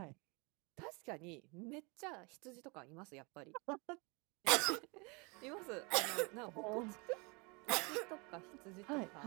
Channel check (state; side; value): quieter; left; 29.7 dB